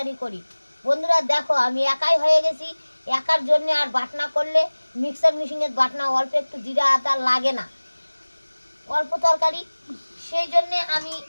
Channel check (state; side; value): inverted; both; correlation -1.00